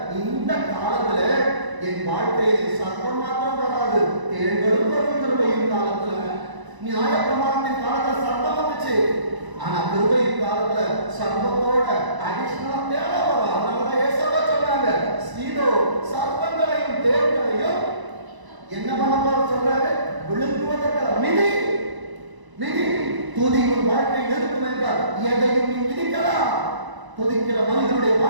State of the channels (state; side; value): late; left; 1.0 ms